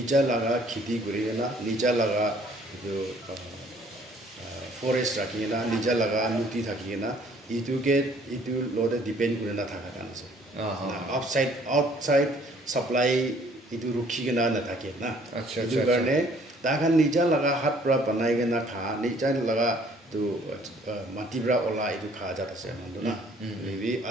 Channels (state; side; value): normal; both; correlation 0.59